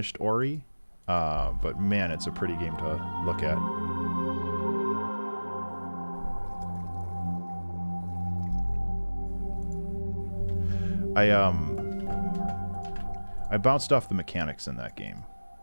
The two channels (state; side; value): inverted; both; correlation -1.00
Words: Ori, but man, it's a pretty game to look at. I bounced off the mechanics in that game,